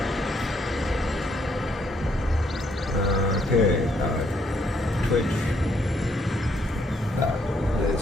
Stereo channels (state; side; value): normal; both; correlation 0.71